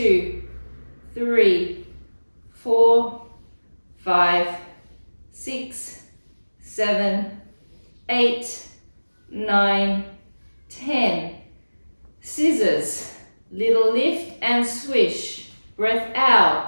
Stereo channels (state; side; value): inverted; both; correlation -1.00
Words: 3, 4, 5, 6, 7, 8, 9, 10. Scissors, little lift and swish. Breath out,